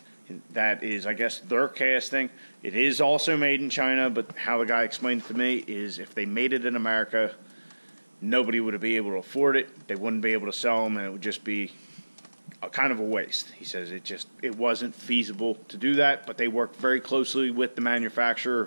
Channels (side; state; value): both; inverted; correlation -1.00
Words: that is, I guess, their casting. It is also made in China, but how the guy explained it to me is if they made it in America, nobody would be able to afford it. They wouldn't be able to sell them, and it would just be kind of a waste. He says it wasn't feasible to do that, but they work very closely with the manufacturer,